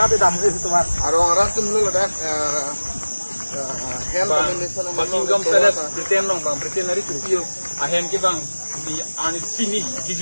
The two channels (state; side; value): inverted; both; correlation -1.00